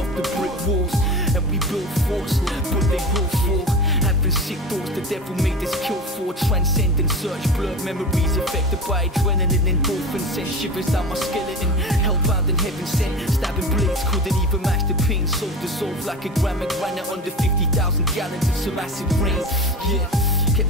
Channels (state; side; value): normal; both; correlation 0.30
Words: off the brick walls. And we built forts, but they will fall. Having sick thoughts the devil made us kill for. Transcendent search, blurred memories affected by adrenaline. Endorphins sent shivers down my skeleton. Hellbound in heaven sent, stabbing blades couldn't even match the pain. Soul dissolved like a gram of granite under 50,000 gallons of some acid rain. Yeah, kept